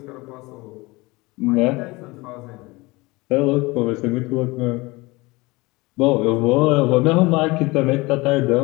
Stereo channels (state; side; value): quieter; right; 23.0 dB